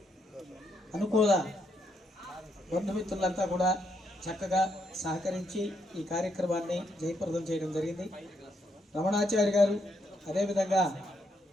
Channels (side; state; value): both; normal; correlation 0.76